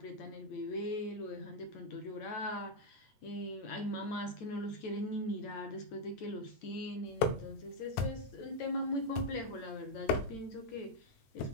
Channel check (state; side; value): late; right; 8.9 ms